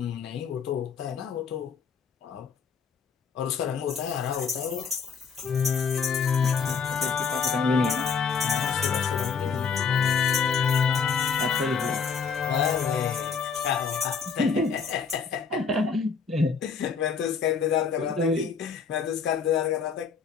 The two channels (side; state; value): right; quieter; 5.9 dB